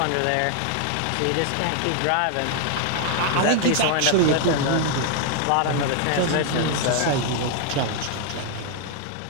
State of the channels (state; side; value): different; both; correlation 0.00